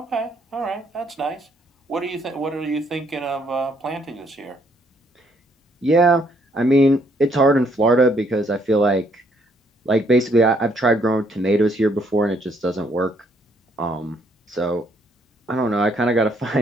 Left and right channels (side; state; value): both; normal; correlation 0.69